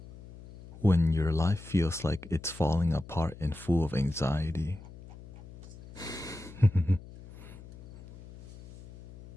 when your life feels like it's falling apart and full of anxiety?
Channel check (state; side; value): noise; left; hum, 18 dB below the sound